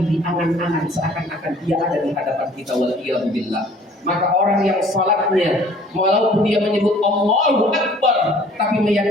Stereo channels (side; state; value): both; normal; correlation 0.53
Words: diangan-angan seakan-akan dia ada di hadapan kita. Wal'iyadu billah. Maka orang yang salatnya, walaupun dia menyebut Allahu Akbar, tapi